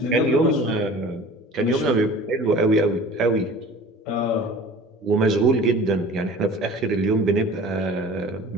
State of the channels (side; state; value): both; normal; correlation 0.42